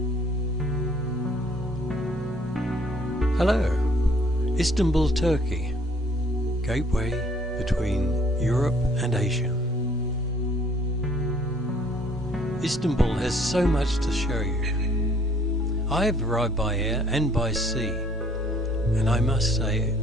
Hello, Istanbul, Turkey, gateway between Europe and Asia. Istanbul has so much to show you. I have arrived by air and by sea, and I must say,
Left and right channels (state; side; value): normal; both; correlation 0.60